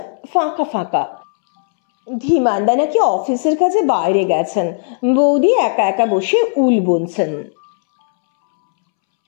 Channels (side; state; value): right; silent; 69 dB below the other